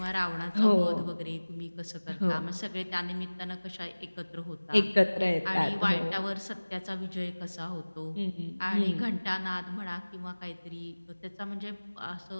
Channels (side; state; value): both; inverted; correlation -1.00